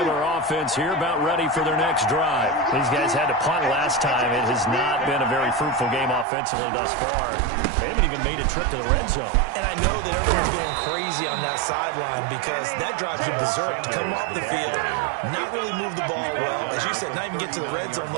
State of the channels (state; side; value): drops out; left; at 6.2 s